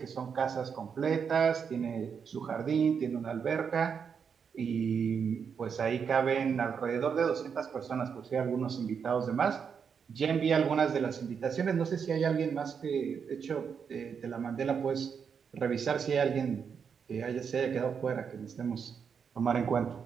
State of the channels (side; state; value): left; quieter; 6.7 dB